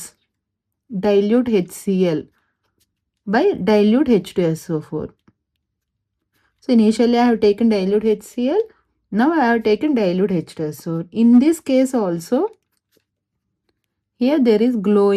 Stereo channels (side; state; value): both; identical; correlation 1.00